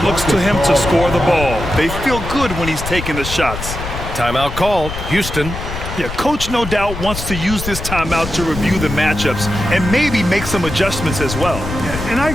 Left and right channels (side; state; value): left; noise; rumble, 7 dB below the sound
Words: looks to him to score the ball. They feel good when he's taking the shots. Timeout called. Houston. Yeah, coach no doubt wants to use this timeout to review the matchups and maybe make some adjustments as well. Yeah, and I